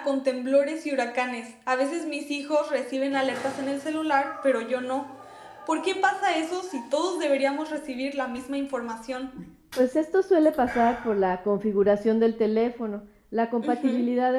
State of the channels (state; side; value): identical; both; correlation 1.00